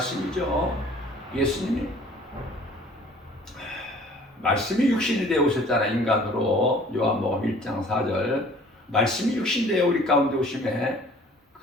예수님이 말씀이 육신이 되어 오셨잖아. 인간으로 요한복음 1장 4절 말씀이 육신 되어 우리 가운데 오심에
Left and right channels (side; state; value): both; normal; correlation 0.52